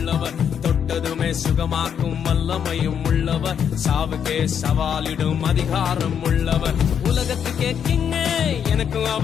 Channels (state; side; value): quieter; right; 8.1 dB